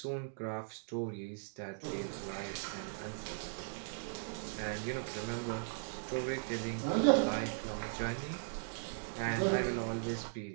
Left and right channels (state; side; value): silent; left; digital silence